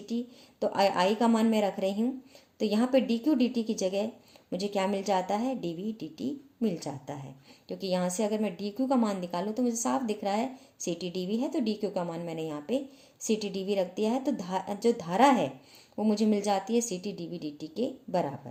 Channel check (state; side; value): identical; both; correlation 1.00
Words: टी, तो I का मान मैं रख रही हूँ, तो यहाँ पे डी क्यू डी टी की जगह मुझे क्या मिल जाता है, डी वी डी टी मिल जाता है। क्योंकि यहाँ से अगर मैं डी क्यू का मान निकालूँ तो मुझे साफ दिख रहा है सी टी डी वी है, तो डी क्यू का मान मैंने यहाँ पे सी टी डी वी रख दिया है, तो जो धारा है वो मुझे मिल जाती है C T d V d t के बराबर।